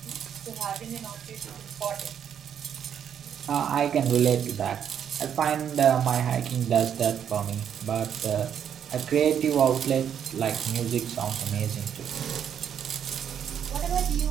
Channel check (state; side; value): quieter; left; 8.7 dB